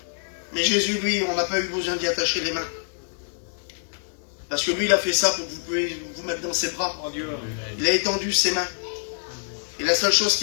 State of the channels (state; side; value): silent; right; digital silence